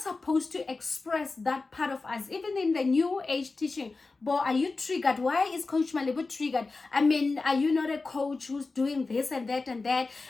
to express that part of us. Even in the New Age teaching, but are you triggered? Why is Coach Malebo triggered? I mean, are you not a coach who's doing this and that and that,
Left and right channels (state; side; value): quieter; right; 3.8 dB